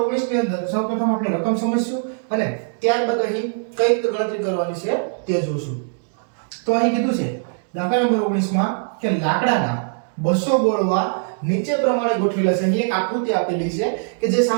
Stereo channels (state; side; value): silent; left; digital silence